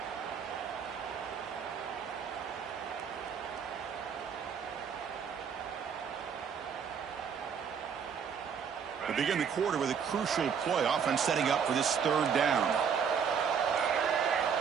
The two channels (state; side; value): quieter; left; 7.0 dB